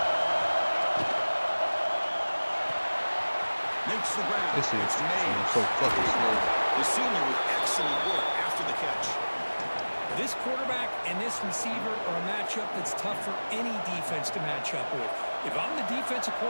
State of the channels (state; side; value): inverted; both; correlation -1.00